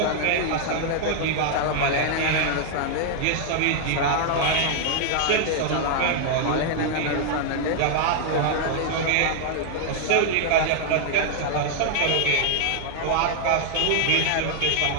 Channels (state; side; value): different; both; correlation 0.00